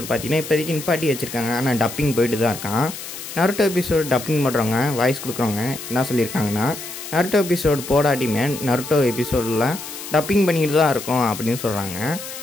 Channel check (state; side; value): noise; left; hiss, 10 dB below the sound